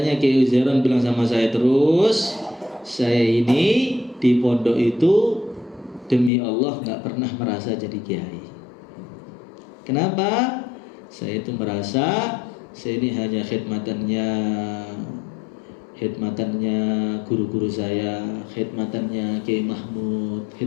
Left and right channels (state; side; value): drops out; right; at 6.3 s